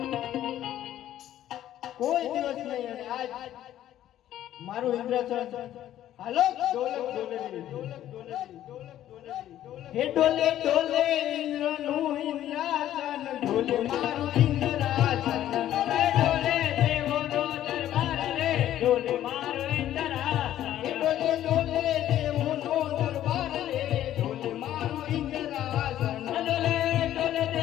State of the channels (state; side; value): quieter; right; 12.3 dB